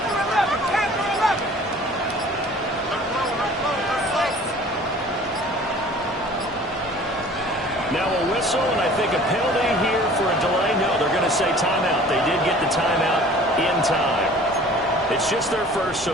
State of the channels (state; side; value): normal; both; correlation 0.48